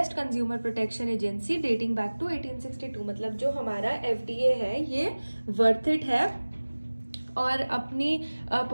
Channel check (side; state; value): both; inverted; correlation -1.00